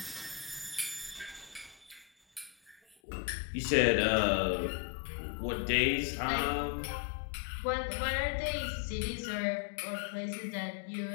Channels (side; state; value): right; drops out; at 3.0 s